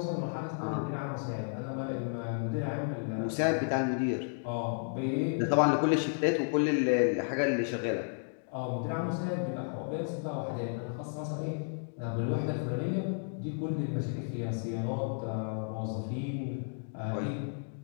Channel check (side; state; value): right; silent; digital silence